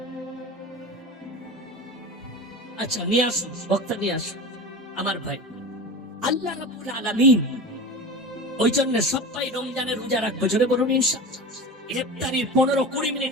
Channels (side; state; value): both; normal; correlation 0.30